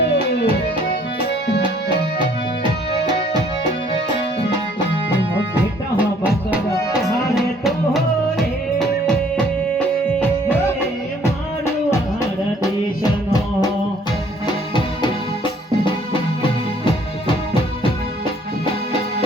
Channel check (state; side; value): normal; both; correlation 0.60